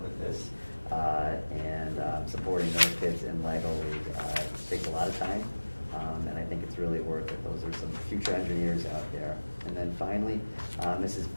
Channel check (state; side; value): inverted; both; correlation -1.00